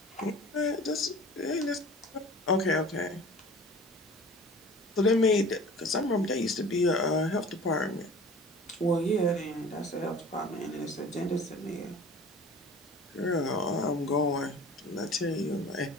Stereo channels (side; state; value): both; normal; correlation 0.42